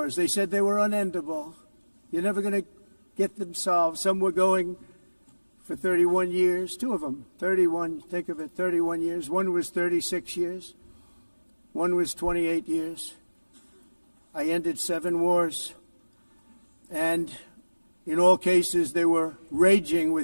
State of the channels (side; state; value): both; inverted; correlation -1.00